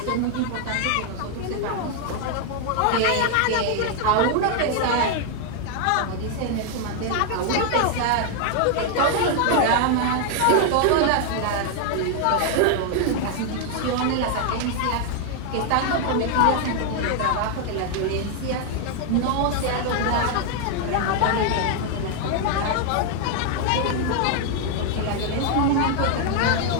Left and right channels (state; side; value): different; both; correlation 0.00